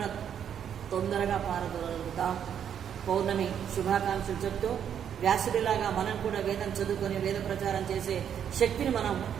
తొందరగా పారదోలుతాం. పౌర్ణమి శుభాకాంక్షలు చెప్తూ వ్యాసుడిలాగా మనం కూడా వేదం చదువుకొని వేద ప్రచారం చేసే శక్తిని మనం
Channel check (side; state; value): left; quieter; 8.8 dB